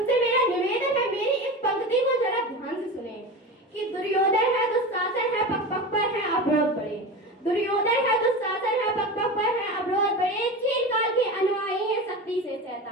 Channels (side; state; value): both; normal; correlation 0.27